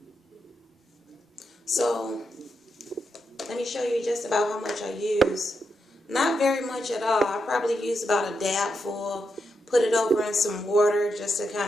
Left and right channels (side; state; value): both; normal; correlation 0.84